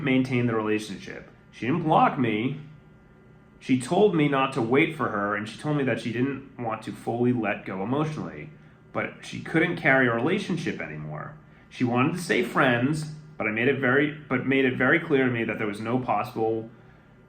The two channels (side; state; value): both; identical; correlation 1.00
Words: maintain the relationship. She didn't block me. She told me not to wait for her, and she told me that she didn't want to fully let go emotionally, but she couldn't carry a relationship anymore. She wanted to stay friends, but made it very clear to me that there was no possible